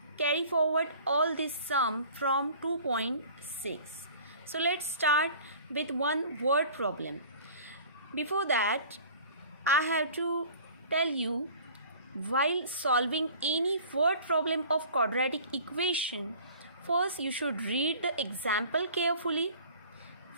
carry forward all this sum from 2.6. So let's start with one word problem. Before that, I have to tell you, while solving any word problem of quadratic equation, first you should read the example carefully,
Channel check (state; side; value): inverted; both; correlation -0.46